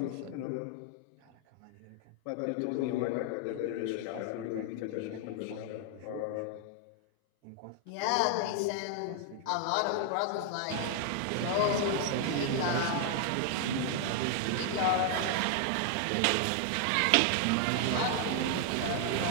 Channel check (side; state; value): both; different; correlation 0.00